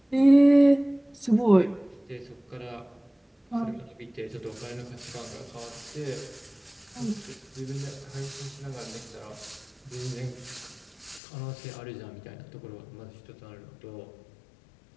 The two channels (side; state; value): right; drops out; at 11.2 s